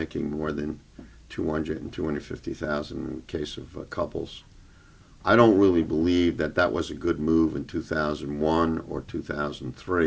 more than 200 and 250,000 in case of couples. I don't really believe that that was a good move in 2001 or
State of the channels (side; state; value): both; identical; correlation 1.00